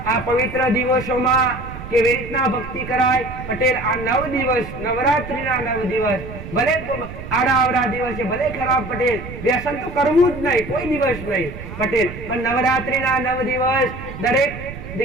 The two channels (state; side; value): noise; right; rumble, 11 dB below the sound